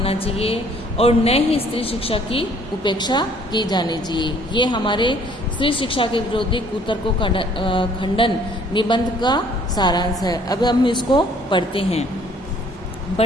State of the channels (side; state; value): both; normal; correlation 0.58